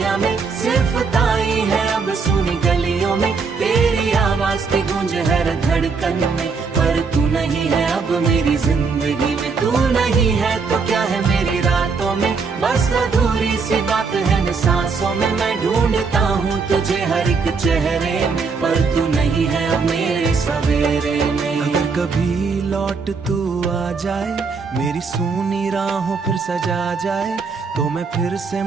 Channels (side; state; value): left; quieter; 4.9 dB